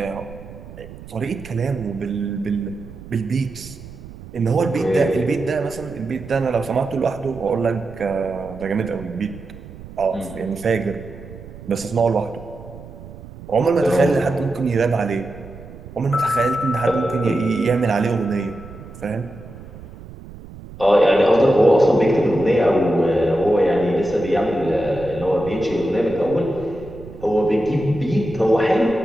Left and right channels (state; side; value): noise; right; rumble, 16 dB below the sound